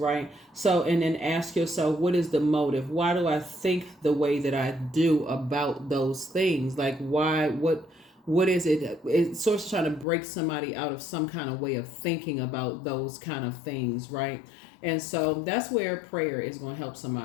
So, and then ask yourself, what is the motive? Why do I think the way that I do about those things? Like, why? What is it? It's sort of trying to break somebody out of some kind of way of thinking about those kind of things, right? And so that's where prayer is going to help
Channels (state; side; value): drops out; right; at 10.1 s